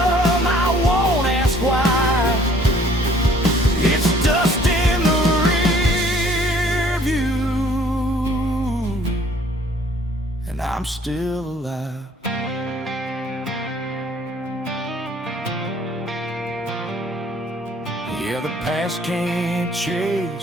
won't ask why. It's dust in the rear view, and I'm still alive. Yeah, the past can't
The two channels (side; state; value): both; normal; correlation 0.57